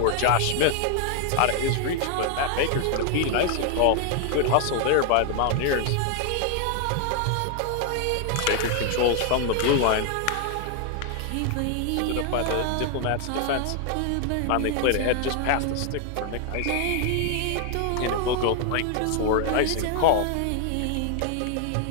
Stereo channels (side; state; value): both; different; correlation 0.00